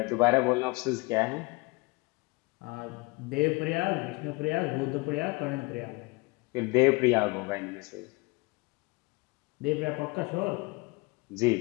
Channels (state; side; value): quieter; right; 25.4 dB